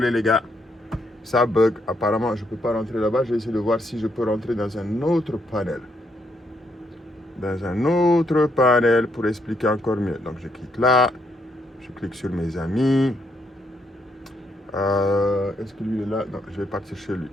les gars. Ça bug. Apparemment, je ne peux pas rentrer là-bas. Je vais essayer de voir si je peux rentrer dans un autre panel. Dans un autre panel pour expliquer encore mieux. Donc, je clique là. Je clique sur mes amis. Est-ce que lui est là? Non, je vais partir chez lui.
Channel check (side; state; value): both; normal; correlation 0.75